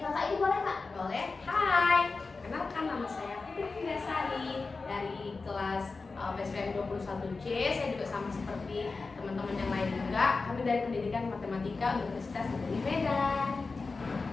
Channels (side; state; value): right; quieter; 4.1 dB